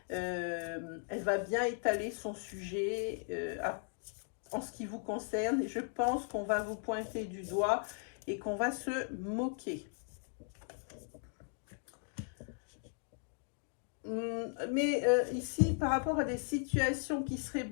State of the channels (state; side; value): silent; right; 53 dB below the other